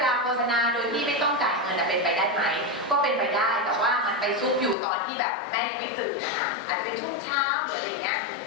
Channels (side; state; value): right; drops out; at 4.8 s